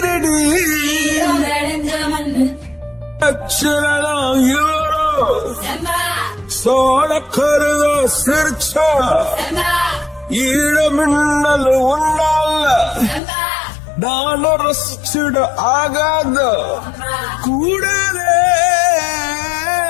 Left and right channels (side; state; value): right; drops out; at 13.2 s